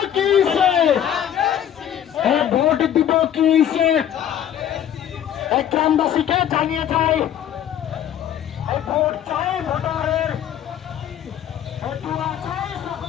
কি ভোট দিব কি গ্রামবাসীকে জানিয়ে যায় ভোট চাই ভোটারের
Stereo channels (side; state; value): right; quieter; 10.2 dB